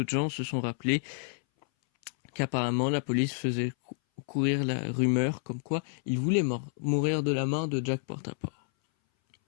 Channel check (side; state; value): right; silent; 58 dB below the other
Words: gens se sont rappelés qu'apparemment la police faisait courir la rumeur comme quoi il voulait mourir de la main de Jack Portaport.